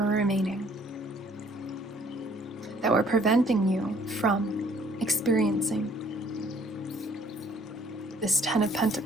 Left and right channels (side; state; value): both; normal; correlation 0.58